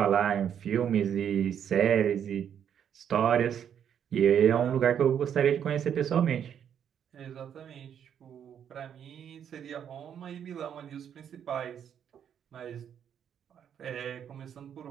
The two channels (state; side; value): quieter; left; 8.8 dB